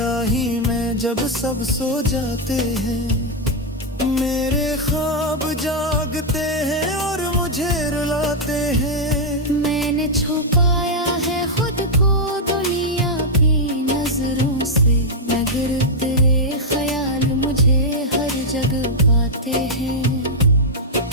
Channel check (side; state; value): both; normal; correlation -0.04